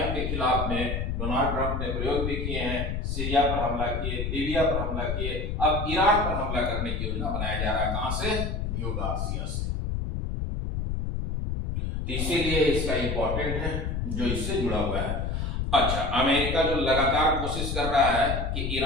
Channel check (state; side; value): noise; left; rumble, 2 dB below the sound